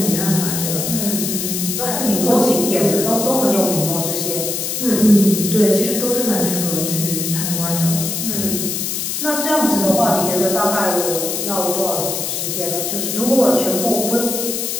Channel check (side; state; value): left; noise; hiss, 2 dB below the sound